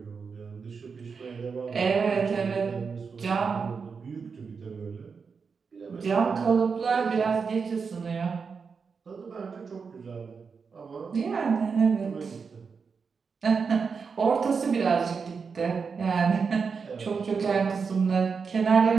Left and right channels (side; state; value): left; quieter; 5.5 dB